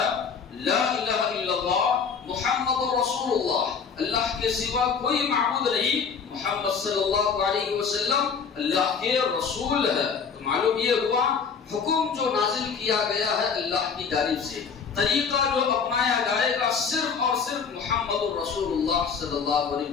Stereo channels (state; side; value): quieter; right; 6.0 dB